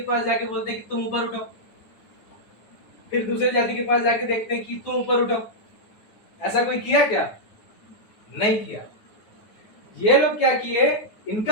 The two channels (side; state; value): right; late; 9.4 ms